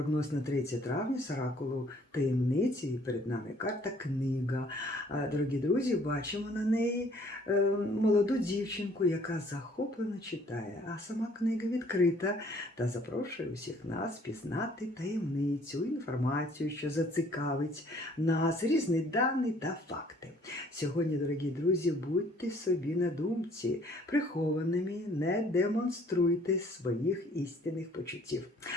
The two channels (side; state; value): both; normal; correlation 0.59